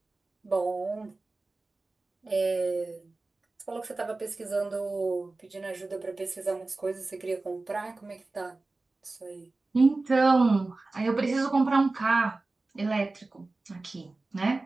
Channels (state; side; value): quieter; left; 3.3 dB